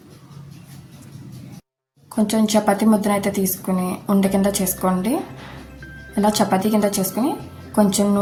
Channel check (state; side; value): identical; both; correlation 1.00